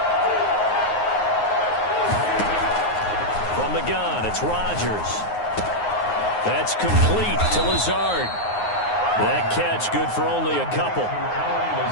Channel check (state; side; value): late; right; 9.5 ms